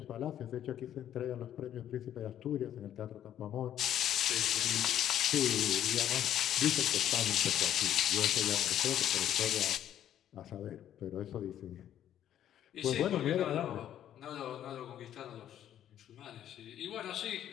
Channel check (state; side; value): quieter; right; 10.9 dB